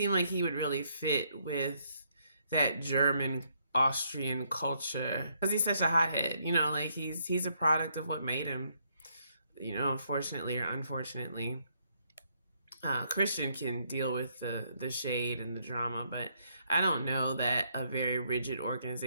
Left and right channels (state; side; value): inverted; both; correlation -0.73